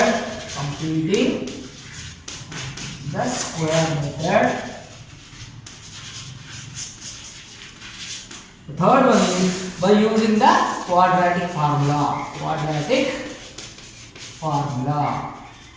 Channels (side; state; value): both; identical; correlation 1.00